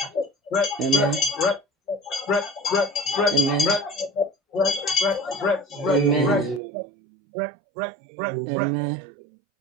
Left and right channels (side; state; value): left; drops out; at 6.6 s